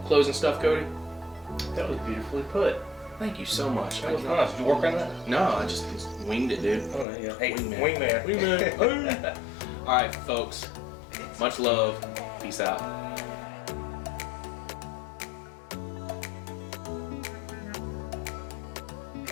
closing stuff, Cody? That was beautifully put. Thank you so much. That was nice. Did you work on that? No, I just winged it, dude. Oh, there you go. Hey, Wingman. Wingman. All right, folks. Much love. Peace out.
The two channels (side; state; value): right; drops out; at 7.1 s